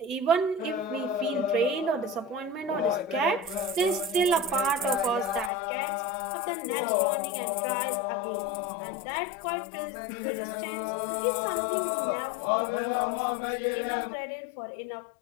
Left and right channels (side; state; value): right; drops out; at 5.5 s